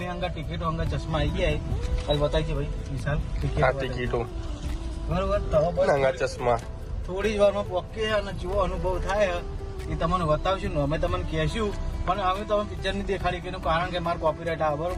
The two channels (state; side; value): identical; both; correlation 1.00